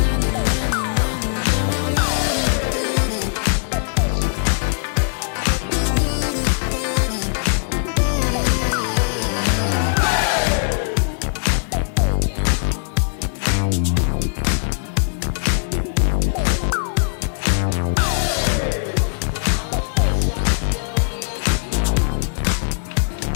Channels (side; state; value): right; silent; digital silence